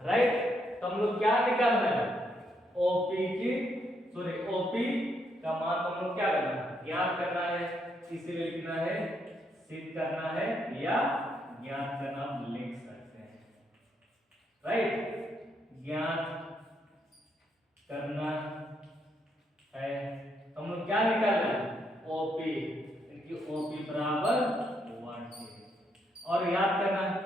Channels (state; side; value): normal; both; correlation 0.76